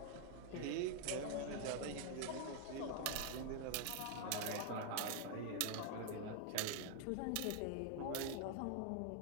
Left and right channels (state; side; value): different; both; correlation 0.00